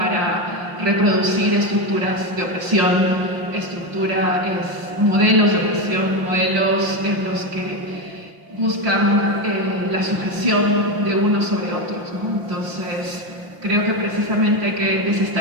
reproducir estructuras de opresión, modelos de opresión, modelos en los que buscan la sujeción de unos sobre otros, ¿no? Entonces, creo que precisamente hay que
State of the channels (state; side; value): late; left; 5.8 ms